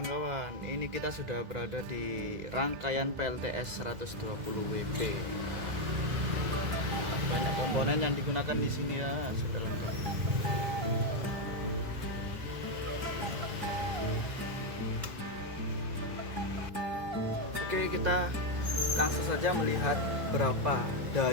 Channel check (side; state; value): left; late; 1.8 ms